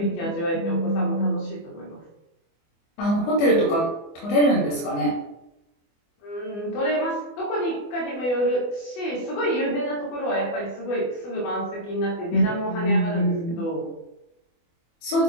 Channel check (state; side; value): late; right; 24 ms